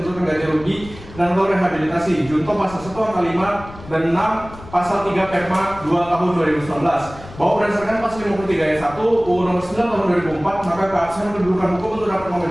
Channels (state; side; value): noise; left; rumble, 17 dB below the sound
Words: ganti rugi dan atau rehabilitasi. Junto pasal 1 angka 5 dan 6 pasal 3 Perma 2 tahun 2019. Bahwa berdasarkan pasal 53 ayat 1 UU Nomor 9 tahun 2004, maka keabsahan kedudukan hukum untuk dapat